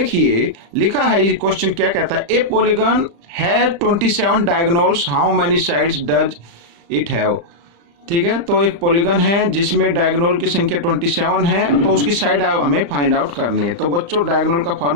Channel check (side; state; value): left; late; 35 ms